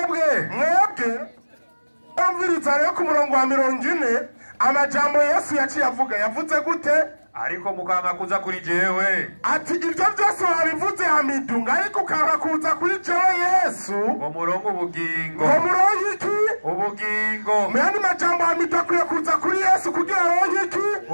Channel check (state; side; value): inverted; both; correlation -1.00